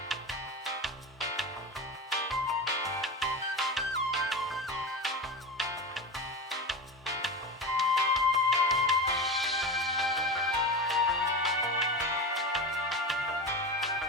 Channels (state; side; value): normal; both; correlation 0.24